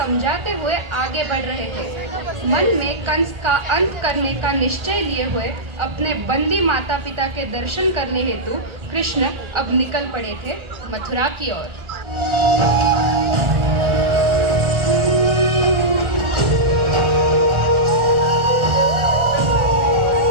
हुए आगे बढ़ रहे थे। मन में कंस का अंत करने का निश्चय लिए हुए अपने बंदी माता पिता के दर्शन करने हेतु कृष्ण अब निकल पड़े थे मथुरा की ओर।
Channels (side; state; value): left; late; 1.4 ms